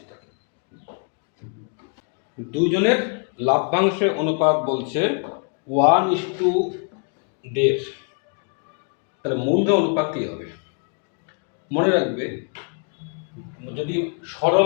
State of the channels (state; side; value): quieter; right; 39.2 dB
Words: টাকা। দুজনের লাভ্যাংশের অনুপাত বলছে 1:1.5। তাহলে মূলধন অনুপাত কী হবে? মনে রাখবে, যদি